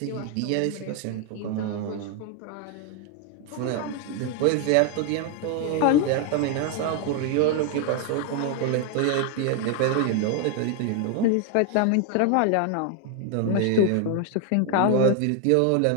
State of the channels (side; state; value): both; different; correlation 0.00